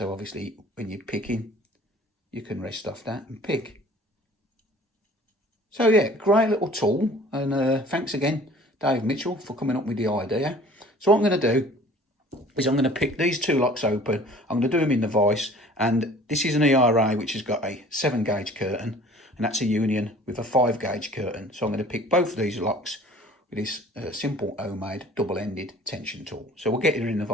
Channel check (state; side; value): normal; both; correlation 0.49